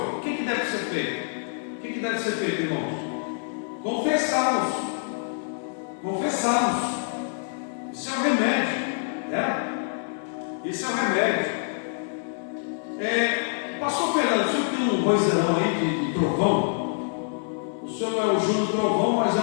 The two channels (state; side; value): silent; right; digital silence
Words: O que deve ser feito? O que deve ser feito, irmãos? Confessá-los. Confessá-los. Isso é o remédio, né? Isso é o remédio. Pastor Fernando, o senhor tem um vozeirão aí de trovão? O senhor não é o Júlio Trovão, mas é